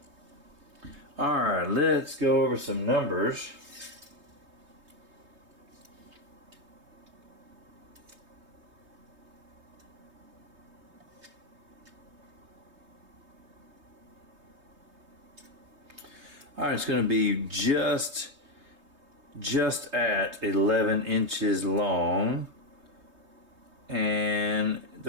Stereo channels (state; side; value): late; left; 3.2 ms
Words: Alright, let's go over some numbers. Alright, it's going to be just at 11 inches long, and